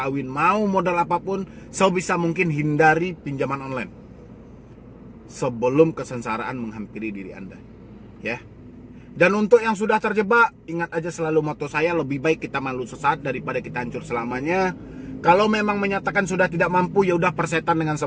mau modal apapun, sebisa mungkin hindari pinjaman online sebelum kesengsaraan menghampiri diri Anda. Ya. Dan untuk yang sudah terjebak, ingat aja selalu moto saya, lebih baik kita malu sesaat daripada kita hancur selamanya. Kalau memang menyatakan sudah tidak mampu, ya udah persetan dengan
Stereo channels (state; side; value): identical; both; correlation 1.00